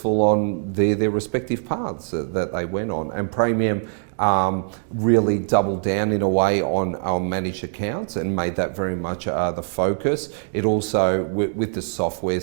on their respective paths that they went on. And Praemium really doubled down in a way on managed accounts and made that very much the focus. It also, with the software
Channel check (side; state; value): left; silent; digital silence